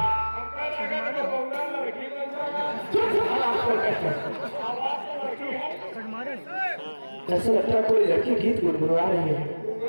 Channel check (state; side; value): inverted; both; correlation -1.00